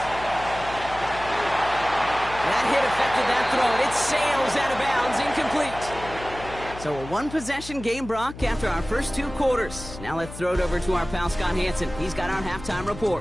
That hit affected that throw. It sails out of bounds, incomplete. So a 1-possession game, Brock, after our first 2 quarters. Now let's throw it over to our pal Scott Hanson. He's got our halftime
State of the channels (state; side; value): noise; left; hum, 14 dB below the sound